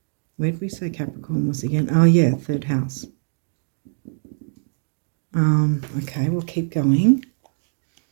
Where did we say Capricorn was again? Oh, yeah, 3rd house. Okay, we'll keep going.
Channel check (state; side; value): silent; left; digital silence